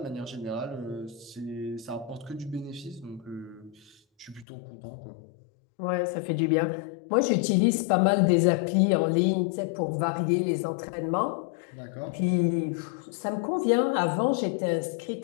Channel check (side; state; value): right; drops out; at 4.5 s